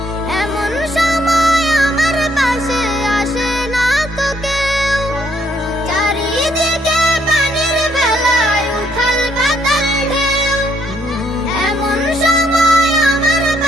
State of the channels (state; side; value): normal; both; correlation 0.70